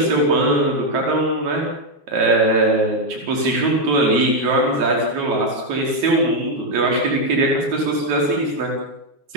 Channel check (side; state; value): left; late; 10 ms